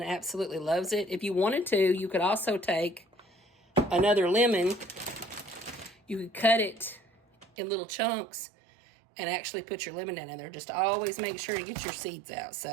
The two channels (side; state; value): left; drops out; at 7.5 s